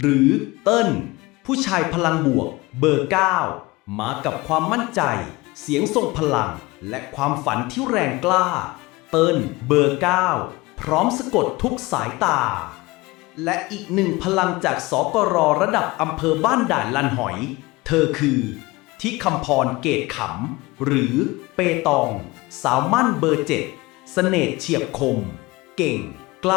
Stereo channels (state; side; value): quieter; right; 21.9 dB